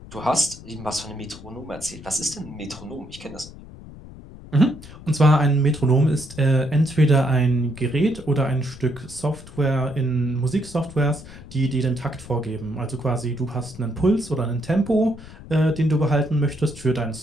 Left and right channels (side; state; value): left; noise; rumble, 17 dB below the sound